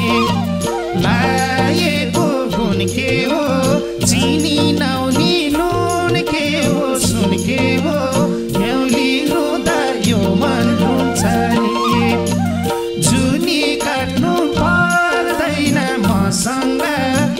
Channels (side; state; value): both; identical; correlation 1.00